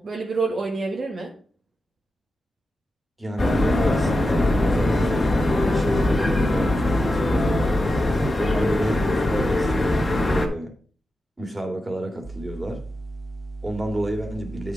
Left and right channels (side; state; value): both; normal; correlation 0.90